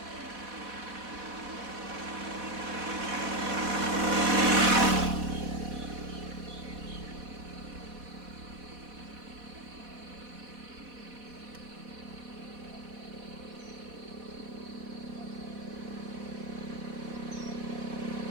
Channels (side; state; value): left; late; 4.1 ms